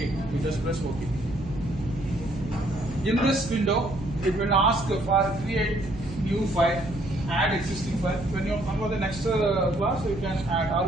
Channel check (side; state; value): right; noise; hum, 12 dB below the sound